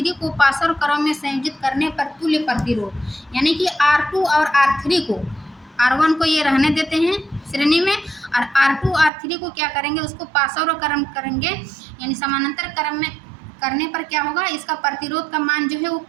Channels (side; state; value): left; drops out; at 9.1 s